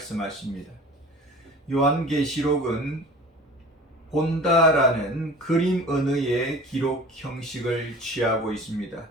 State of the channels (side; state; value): both; normal; correlation 0.42